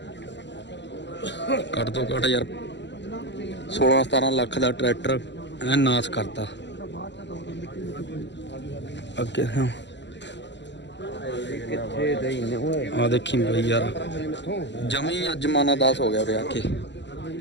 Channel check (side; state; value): right; late; 0.52 ms